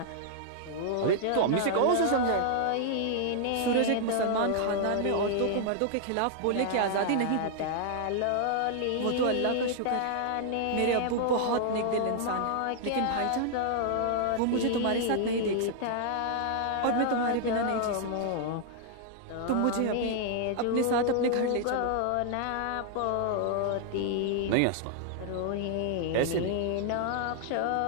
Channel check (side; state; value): both; different; correlation -0.01